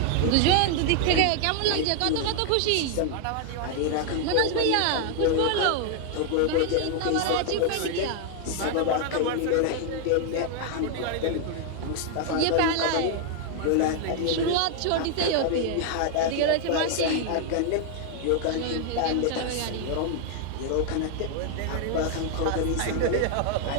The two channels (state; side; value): different; both; correlation 0.00